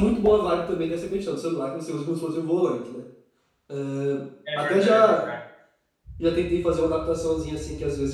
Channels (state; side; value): identical; both; correlation 1.00